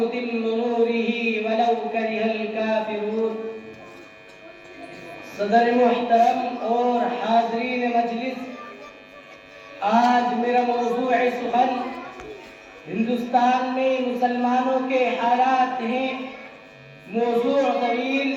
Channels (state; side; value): identical; both; correlation 1.00